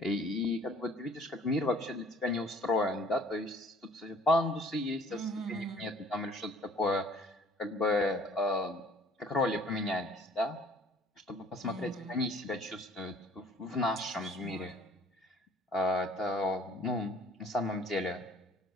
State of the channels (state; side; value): normal; both; correlation 0.54